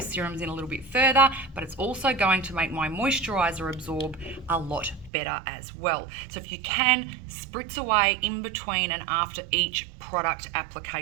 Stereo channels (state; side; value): drops out; left; at 5.1 s